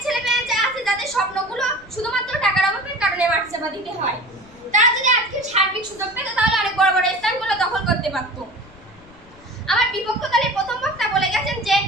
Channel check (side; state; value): left; noise; rumble, 25 dB below the sound